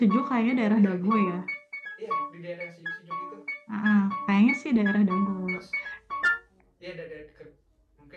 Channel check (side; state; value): both; identical; correlation 1.00